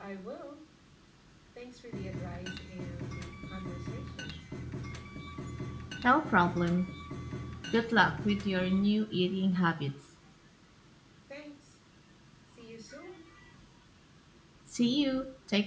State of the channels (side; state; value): both; identical; correlation 1.00